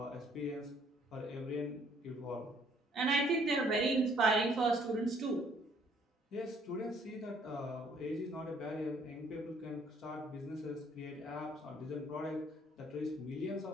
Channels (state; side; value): normal; both; correlation 0.63